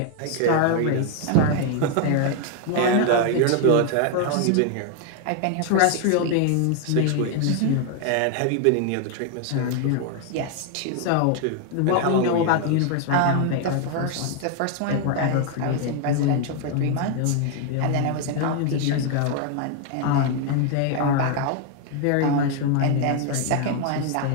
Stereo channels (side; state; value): both; different; correlation 0.00